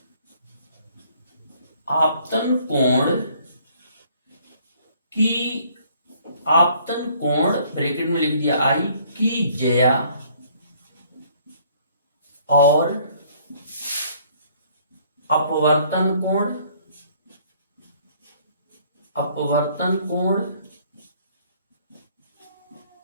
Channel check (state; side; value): inverted; both; correlation -0.61